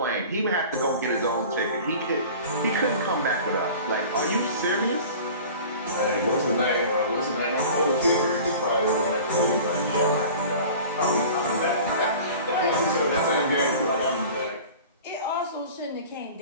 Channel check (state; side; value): inverted; both; correlation -0.41